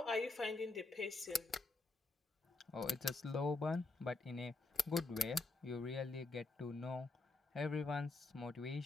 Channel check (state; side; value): quieter; right; 3.4 dB